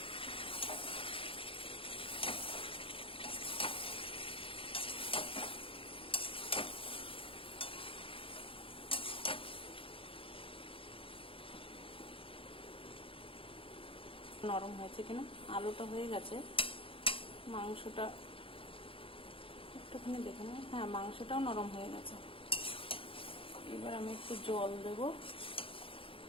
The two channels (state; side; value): late; right; 0.26 ms